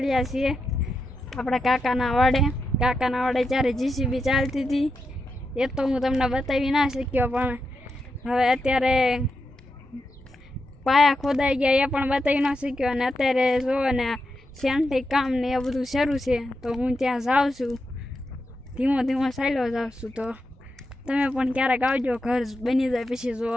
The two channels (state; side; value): normal; both; correlation 0.87